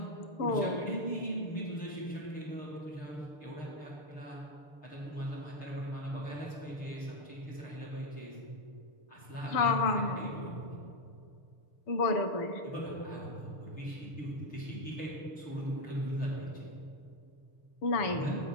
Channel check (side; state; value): right; late; 6.7 ms